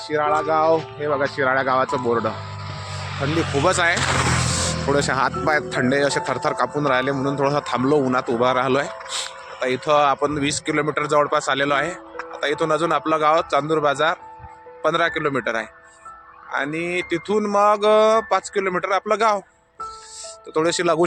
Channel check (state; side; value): identical; both; correlation 1.00